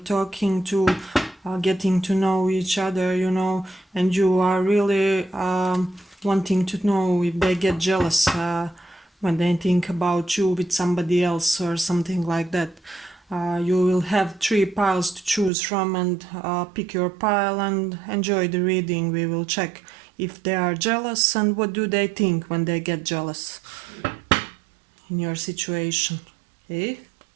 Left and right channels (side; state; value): left; drops out; at 15.5 s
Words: to, getting to know each other, and you are really wanting to know if they get jealous when they think about you with somebody else or something like that. You will have 3 piles to choose from and pick your pile and enjoy the reading. We will check if they are jealous and what do they think when they get jealous in your situation. Okay,